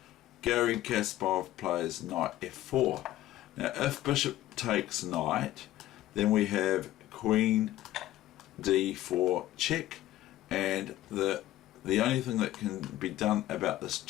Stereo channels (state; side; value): quieter; right; 14.6 dB